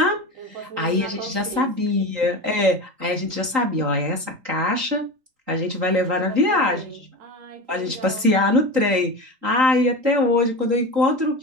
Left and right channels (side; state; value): left; late; 3.8 ms